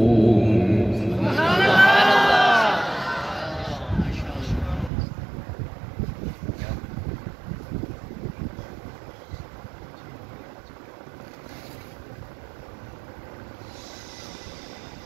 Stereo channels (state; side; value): drops out; left; at 4.9 s